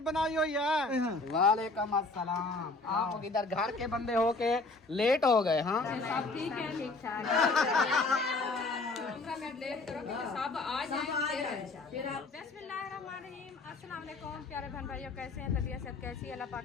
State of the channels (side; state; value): right; quieter; 3.4 dB